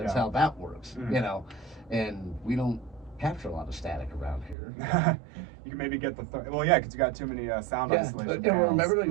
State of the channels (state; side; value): drops out; left; at 4.5 s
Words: how that works, and we don't capture a lot of static around here. You can maybe get because you got too many sound isolation. And remember,